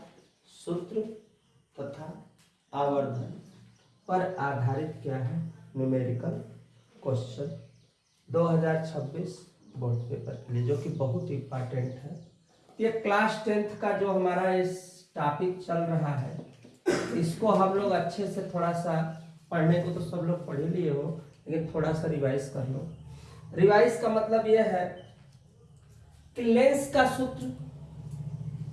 सूत्र तथा आवर्धन पर आधारित क्या है न्यूमेरिकल क्वेश्चन 2026 बोर्ड पेपर के लिए, जो कि बहुत इंपॉर्टेंट है। ये क्लास 10th का जो हमारा इस टॉपिक चल रहा है, इसको हम लोग अच्छे से थोड़ा सा पढ़ने को तो सब लोग पढ़ ही लिए हो, लेकिन थोड़ा सा रिवाइज कर लो। रिवाइज का मतलब यह है कि लेंस का सूत्र,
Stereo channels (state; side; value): identical; both; correlation 1.00